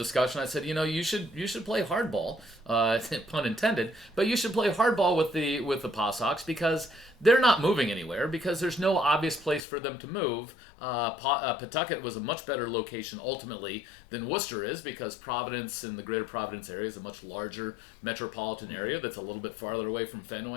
I said, you should play hardball, pun intended, but you should play hardball with the Pawsox because they're not moving anywhere because there's no obvious place for them to move. Pawtucket was a much better location ultimately than Worcester is because Providence and the greater Providence area is a much larger metropolitan area that's a little bit farther away from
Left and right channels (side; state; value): right; drops out; at 9.6 s